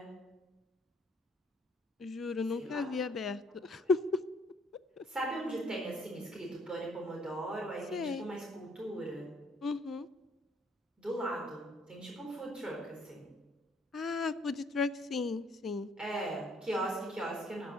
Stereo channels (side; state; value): both; normal; correlation 0.63